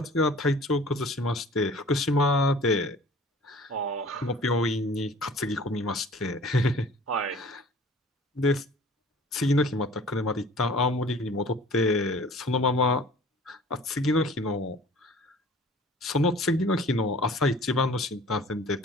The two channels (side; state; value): both; normal; correlation 0.48